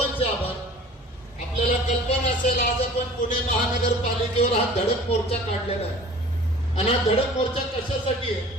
आभार. आपल्याला कल्पना असेल आज आपण पुणे महानगरपालिकेवर हा धडक मोर्चा काढलेला आहे. आणि हा धडक मोर्चा कशासाठी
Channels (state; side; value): normal; both; correlation 0.45